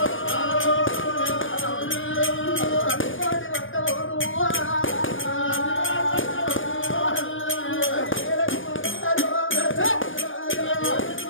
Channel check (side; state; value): right; late; 0.57 ms